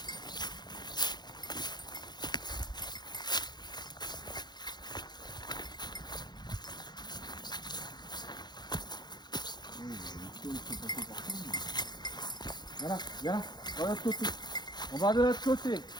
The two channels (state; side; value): late; right; 0.21 ms